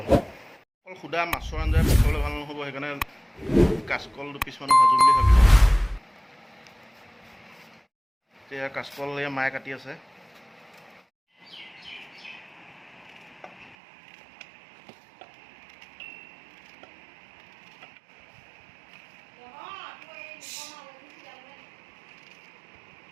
সুদা মাছৰ আঞ্জাই খাবলৈ ভাল নহ'ব, সেইকাৰণে কাচকল দুপিচমান ভাজোঁ বুলি ভাবিলোঁ। এতিয়া কাচকল এয়া মায়ে কাটি আছে।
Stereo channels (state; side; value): drops out; left; at 13.8 s